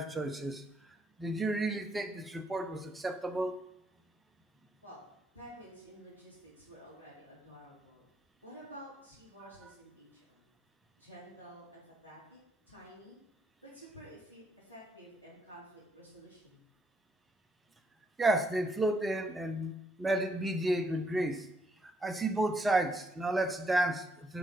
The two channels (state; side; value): normal; both; correlation 0.74